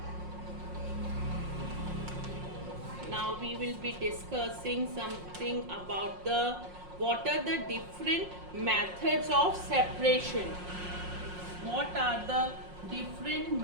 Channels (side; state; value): left; late; 5.6 ms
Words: now we will be discussing something about the what are the different methods of separation. What are the different